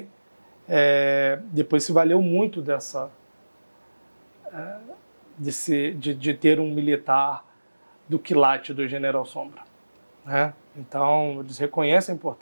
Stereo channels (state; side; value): inverted; both; correlation -1.00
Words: depois se valeu muito de ter um militar do quilate do General Sombra, né? Então, eles reconhecem a